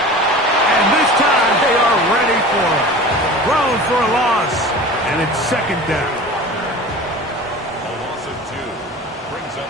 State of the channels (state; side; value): normal; both; correlation 0.37